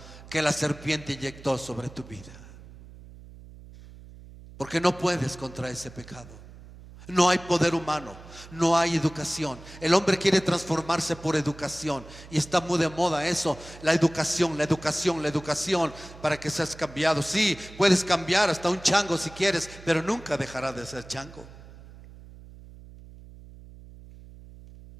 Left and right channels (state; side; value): noise; right; hum, 18 dB below the sound